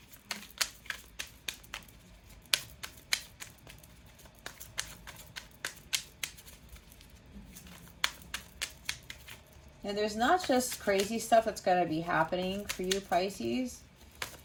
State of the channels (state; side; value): identical; both; correlation 1.00